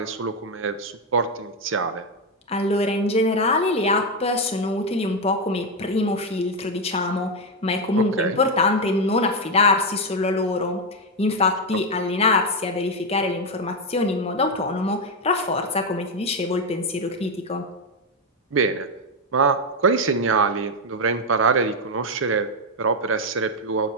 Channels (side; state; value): both; normal; correlation 0.06